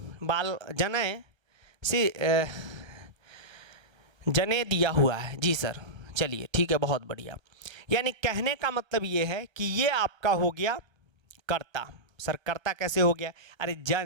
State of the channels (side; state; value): left; late; 1.3 ms